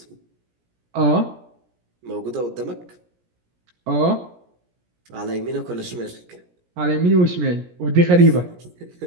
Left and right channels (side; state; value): left; late; 17 ms